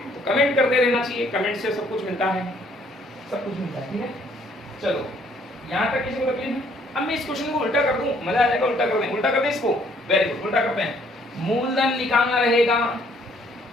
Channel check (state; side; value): normal; both; correlation 0.64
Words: तो कमेंट करते रहना चाहिए, कमेंट से सब कुछ मिलता है, सब कुछ मिलता है, ठीक है। चलो यहाँ तक किसी को तकलीफ है? अब मैं इस क्वेश्चन को उल्टा कर दूं, मजा आ जाएगा। उल्टा कर दें, उल्टा कर दें इसको। वेरी गुड, उल्टा करते हैं। मूलधन निकालना रहेगा,